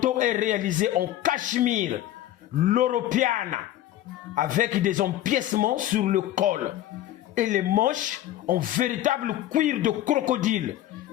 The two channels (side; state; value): right; quieter; 13.4 dB